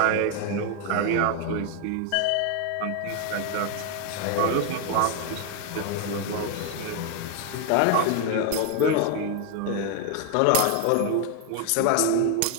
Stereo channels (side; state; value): both; different; correlation 0.01